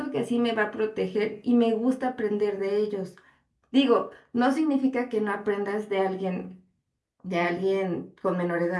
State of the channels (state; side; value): identical; both; correlation 1.00